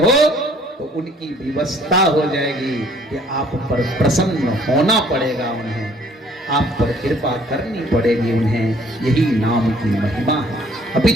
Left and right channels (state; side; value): normal; both; correlation 0.59